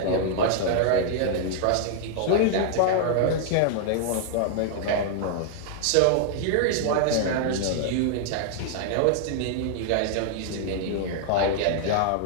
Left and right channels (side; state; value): both; different; correlation -0.01